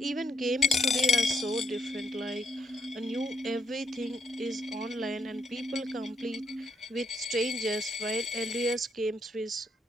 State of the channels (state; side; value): normal; both; correlation 0.75